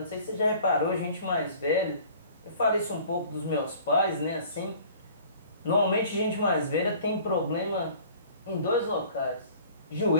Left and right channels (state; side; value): inverted; both; correlation -0.50